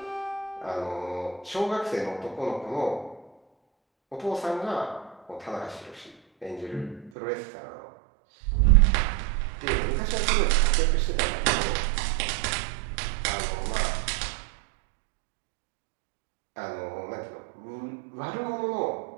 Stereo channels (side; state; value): left; drops out; at 7.1 s